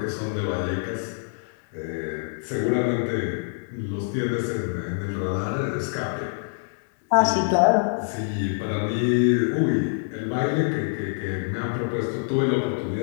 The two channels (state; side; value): silent; right; digital silence